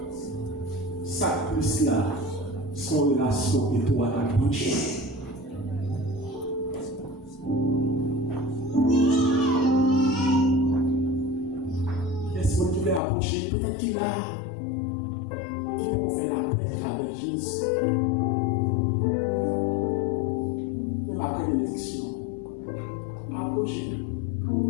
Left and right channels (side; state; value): right; drops out; at 13.0 s